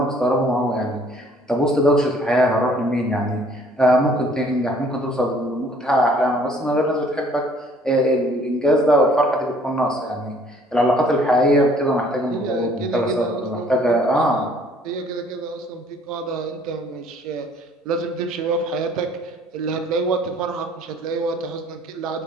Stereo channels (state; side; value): normal; both; correlation 0.58